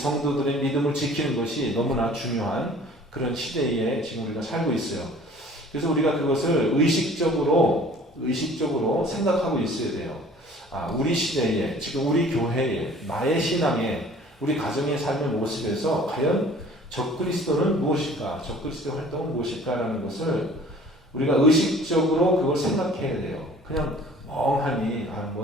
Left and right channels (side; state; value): both; normal; correlation 0.50